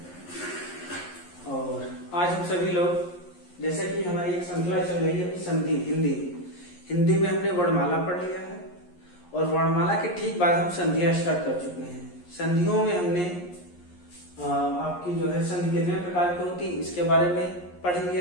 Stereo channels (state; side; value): late; right; 11 ms